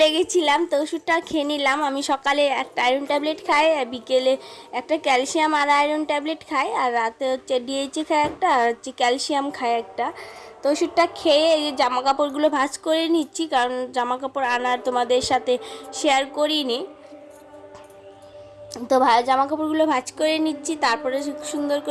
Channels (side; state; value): both; identical; correlation 1.00